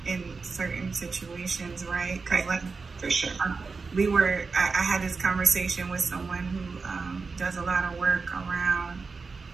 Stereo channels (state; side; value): quieter; left; 4.5 dB